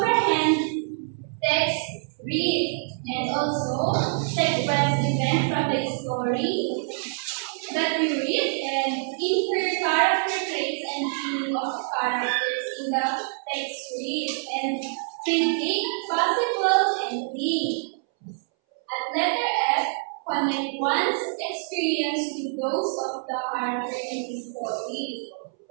text read and also sequence event from the story that we read and infer character traits and meaning of characters in the text read and predict possible ending. At letter F, connect one's experience with those of the character in the story.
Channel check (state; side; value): silent; left; 61 dB below the other